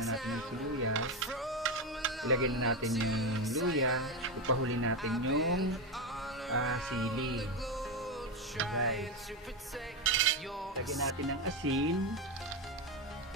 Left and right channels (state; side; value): normal; both; correlation 0.12